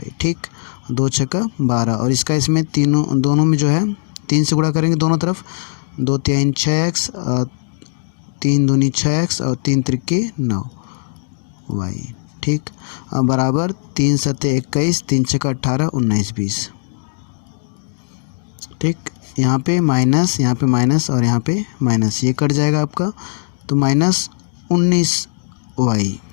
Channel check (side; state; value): right; silent; digital silence